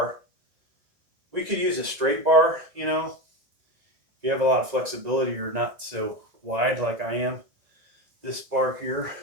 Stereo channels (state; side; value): late; left; 1.9 ms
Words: We could use a straight bar, you know. If you have a lot of flexibility, you're not so wide like I am. This bar here,